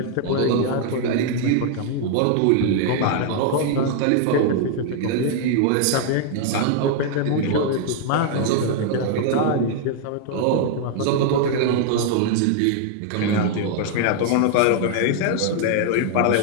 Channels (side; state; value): both; different; correlation 0.00